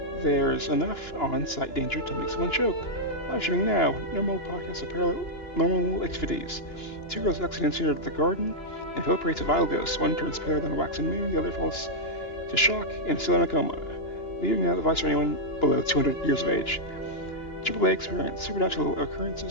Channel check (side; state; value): right; late; 2.9 ms